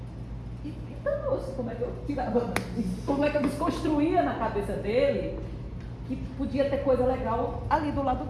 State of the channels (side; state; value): both; identical; correlation 1.00